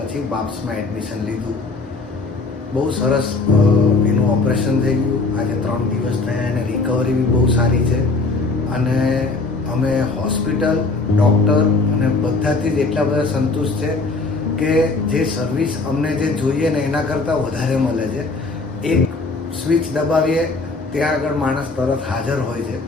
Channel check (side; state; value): right; quieter; 3.7 dB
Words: બાપ્સમાં એડમિશન લીધું. બહુ સરસ એનું ઓપરેશન થઈ ગયું. આજે 3 દિવસ થયા, એને રિકવરી બી બહુ સારી છે અને અમે હોસ્પિટલ, ડૉક્ટર અને બધાથી જ એટલા બધા સંતુષ્ટ છે કે જે સર્વિસ અમને જે જોઈએ ને એના કરતાં વધારે મળે છે. એક સ્વિચ દબાવીએ ત્યાં આગળ માણસ તરત હાજર હોય છે.